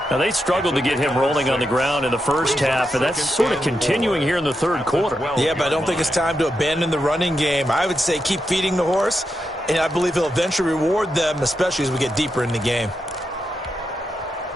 Now, they struggled to get him rolling on the ground in the first half, and that's sort of continuing here in the third quarter. Yeah, but I don't think it's time to abandon the running game. I would say keep feeding the horse, and I believe he'll eventually reward them, especially as we get deeper in the game.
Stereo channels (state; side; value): normal; both; correlation 0.86